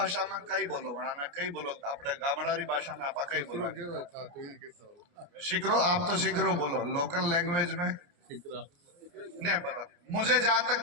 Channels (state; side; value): late; left; 29 ms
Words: में कई बोलो, बनाना कई बोलो, अपने गामडारी भाषा में आप कई बोलो। शिकरो, आप तो शिकरो बोलो, लोकल लैंग्वेज में नहीं पता मुझे। जहां